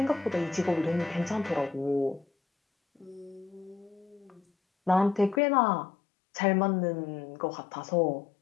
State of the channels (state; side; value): drops out; right; at 5.4 s